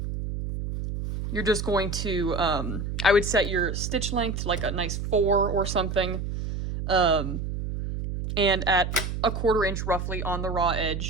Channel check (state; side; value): noise; right; hum, 4 dB below the sound